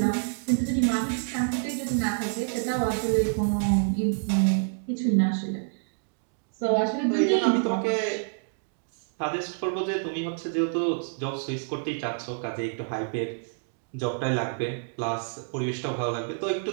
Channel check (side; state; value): left; silent; digital silence